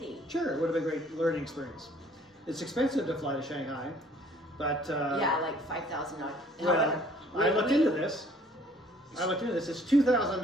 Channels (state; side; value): normal; both; correlation 0.57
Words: Sure, it would have been a great learning experience. It's expensive to fly to Shanghai, but yeah, like $5,000. Well, I looked into this. It's